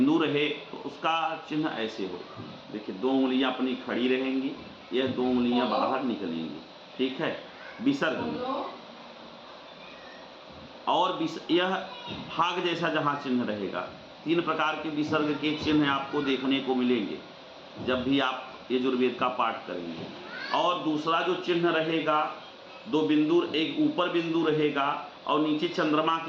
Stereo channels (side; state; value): both; identical; correlation 1.00